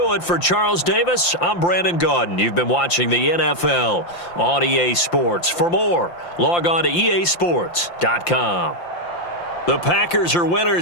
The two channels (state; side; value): late; right; 5.8 ms